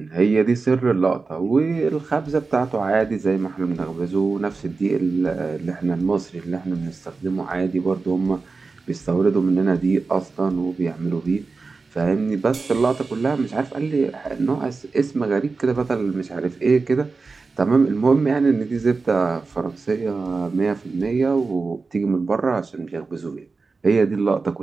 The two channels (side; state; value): left; quieter; 4.2 dB